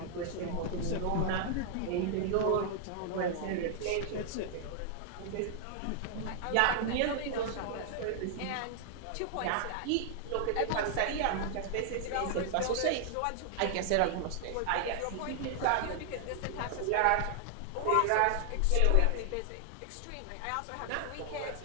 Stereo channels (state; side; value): different; both; correlation 0.00